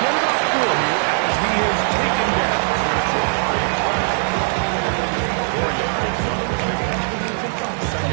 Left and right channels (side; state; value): left; silent; 57 dB below the other